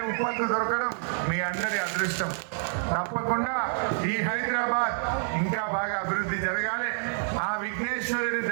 ఉప్పందు దొరకడం మీ అందరి అదృష్టం. తప్పకుండా ఈ హైదరాబాద్ ఇంకా బాగా అభివృద్ధి జరగాలి. ఆ విఘ్నేశ్వరుడి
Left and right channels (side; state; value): left; silent; 59 dB below the other